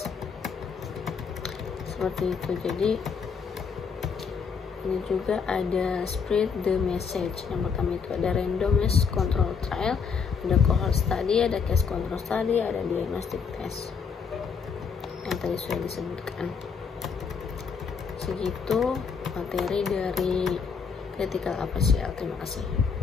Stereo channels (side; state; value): right; quieter; 6.0 dB